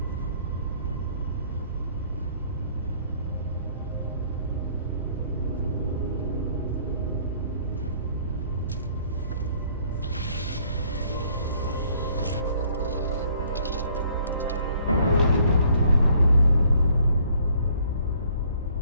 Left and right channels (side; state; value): both; inverted; correlation -0.61